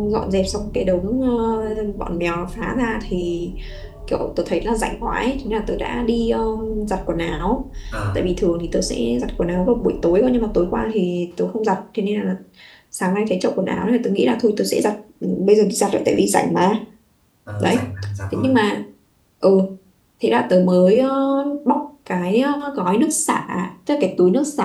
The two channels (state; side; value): identical; both; correlation 1.00